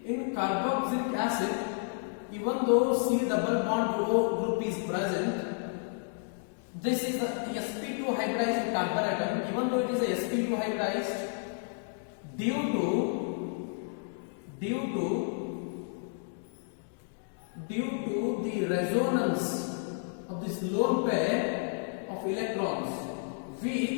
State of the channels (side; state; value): right; silent; digital silence